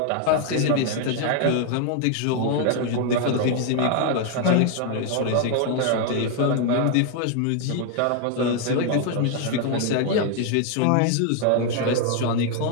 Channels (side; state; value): both; different; correlation 0.00